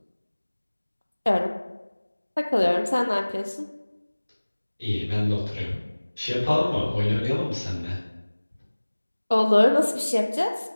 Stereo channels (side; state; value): both; inverted; correlation -1.00